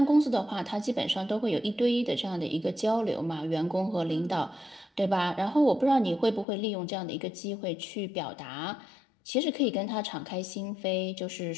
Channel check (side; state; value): right; drops out; at 6.5 s